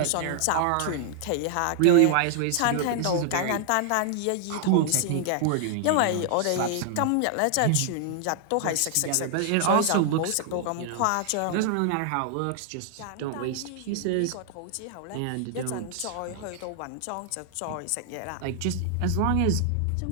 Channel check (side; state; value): both; different; correlation -0.01